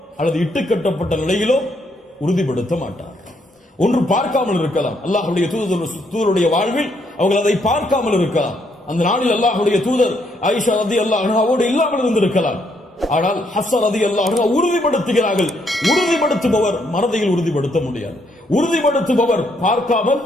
அல்லது இட்டுக்கட்டப்பட்ட நிலையிலோ உறுதிப்படுத்த மாட்டார். ஒன்று பார்க்காமல் இருக்கலாம், அல்லாஹ்வுடைய தூதருடைய வாழ்வில் அவர்கள் அதை பார்க்காமல் இருக்கலாம். அந்த நாளில் அல்லாஹ்வுடைய தூதர் ஆயிஷா ரலியல்லாஹு அன்ஹாவோடு இல்லாமல் இருந்திருக்கலாம். ஆனால் ஹஃப்ஸா ரலியல்லாஹு அன்ஹா உறுதிப்படுத்துகிறார்கள். உறுதிப்படுத்துபவர் மறதியில் உறுதிப்படுத்த முடியாது, உறுதிப்படுத்துபவர் பார்க்காமல்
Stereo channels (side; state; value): both; normal; correlation 0.73